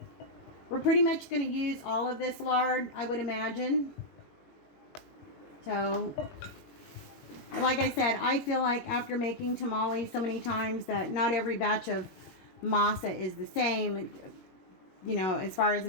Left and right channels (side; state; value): right; late; 21 ms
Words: We're pretty much going to use all of this lard, I would imagine. So, like I said, I feel like after making tamales so many times that not every batch of masa is the same, you know, as far as